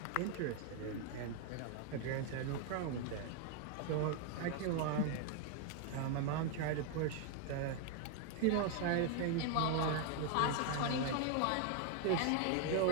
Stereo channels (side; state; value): both; different; correlation 0.00